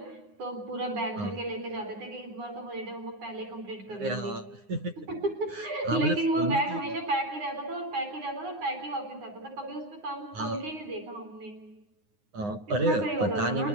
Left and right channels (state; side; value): late; left; 9.7 ms